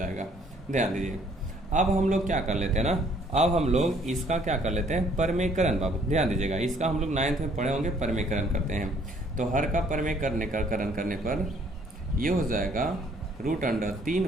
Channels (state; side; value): normal; both; correlation 0.62